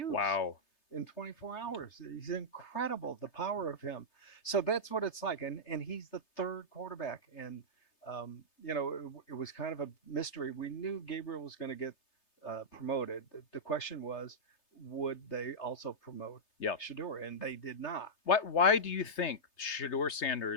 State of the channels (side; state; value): right; late; 3.3 ms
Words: Wow. In 24 hours. He's incredible, the power of him. So that's what it's like. And he's the 3rd quarterback. And, it was kind of a mystery. We knew Gabriel was going to get promoted. The question was, would they also promote SHEDEUR? And they did not. Why do you think SHEDEUR'S